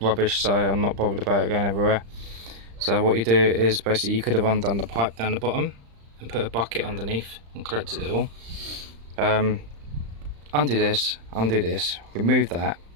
so I'm not bothered about it going everywhere. So what you do is basically you could have undone the pipe down the bottom and put a bucket underneath and collected it all. Undo this, remove that,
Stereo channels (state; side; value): late; left; 35 ms